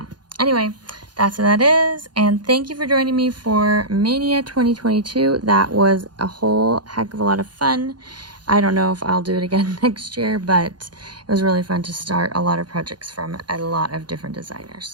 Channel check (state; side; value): late; left; 0.70 ms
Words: anyway, that's what that is. And thank you for joining me for Maynia 2022. That was a whole heck of a lot of fun. I don't know if I'll do it again next year, but it was really fun to start a lot of projects from a lot of different